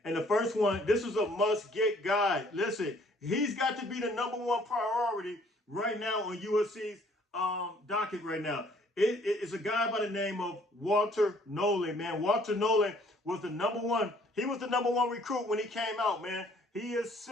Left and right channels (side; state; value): both; normal; correlation 0.60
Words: And the first one, this is a must-get guy. Listen, he's got to be the #1 priority right now on USC's docket right now. It's a guy by the name of Walter Nolan, man. Walter Nolan was the #1. He was the #1 recruit when he came out, man. He is